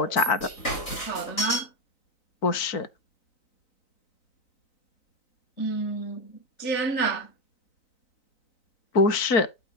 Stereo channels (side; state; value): right; late; 3.9 ms